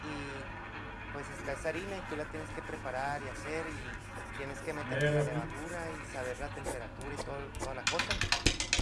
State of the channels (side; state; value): both; identical; correlation 1.00